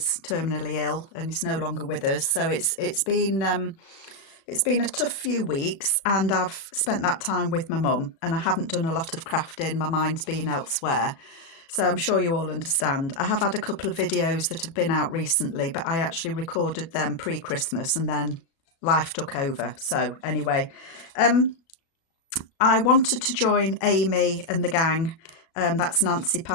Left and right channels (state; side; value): late; right; 37 ms